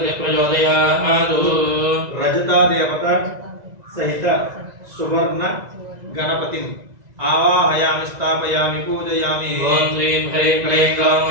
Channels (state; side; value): late; left; 1.9 ms